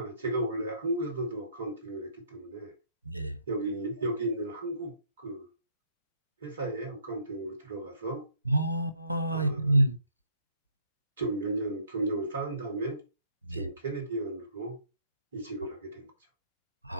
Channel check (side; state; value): both; inverted; correlation -0.66